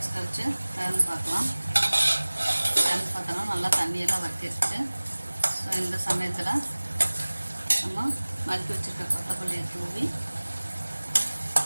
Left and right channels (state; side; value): inverted; both; correlation -1.00